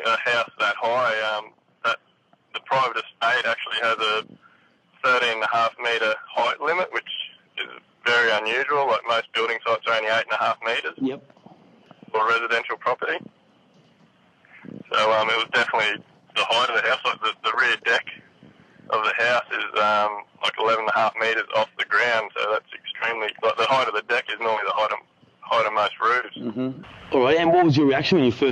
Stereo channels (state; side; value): identical; both; correlation 1.00